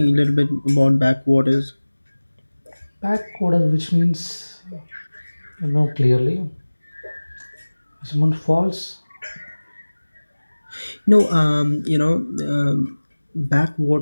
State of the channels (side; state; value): both; inverted; correlation -1.00